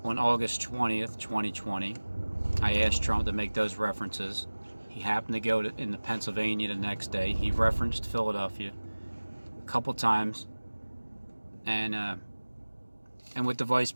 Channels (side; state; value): both; inverted; correlation -1.00